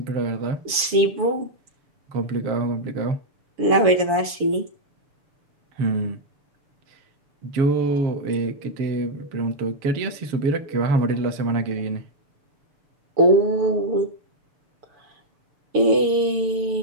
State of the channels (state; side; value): late; left; 7.0 ms